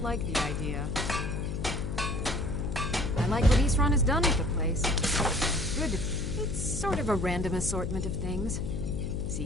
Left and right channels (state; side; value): noise; left; hum, 3 dB below the sound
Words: like the idea. I like what Isran has done with the place. Good. It's sort of a random assortment of things.